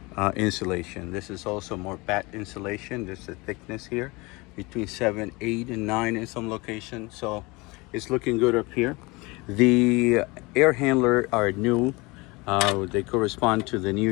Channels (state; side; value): quieter; right; 24.6 dB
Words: insulation. This is also more batt insulation. There's a thickness here between 7, 8, and 9 in some locations, so it's looking good up here. The air handler are new. They correspond to the new